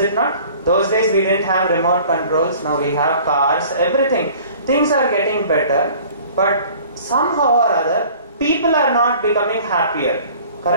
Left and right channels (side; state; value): both; inverted; correlation -0.49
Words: not? Those days we didn't have remote controls. Now we have cars, everything. Things are getting better, but somehow or other, people are not becoming happier.